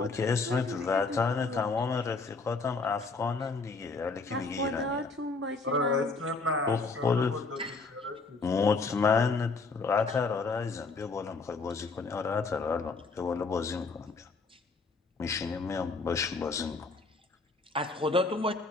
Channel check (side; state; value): right; quieter; 4.0 dB